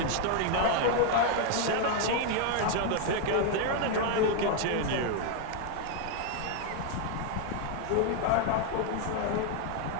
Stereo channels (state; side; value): different; both; correlation 0.01